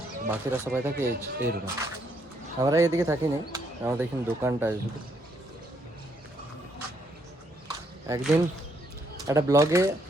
বাকিরা সবাই থাকে এই রুমে। আমরা এদিকে থাকি না, আমাদের এখানে দোকানটা আছে শুধু। একদিন একটা ব্লগে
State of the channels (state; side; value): normal; both; correlation 0.72